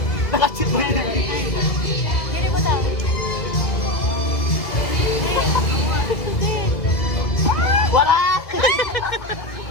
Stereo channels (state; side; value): late; right; 2.3 ms